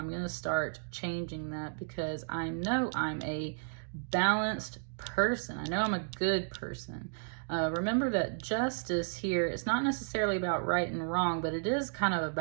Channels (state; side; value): silent; left; digital silence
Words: going to start changing that because I know I'm a balanced person. I know I'm a good person. Remember that Justice here, it's not necessarily about right and wrong, but it is kind of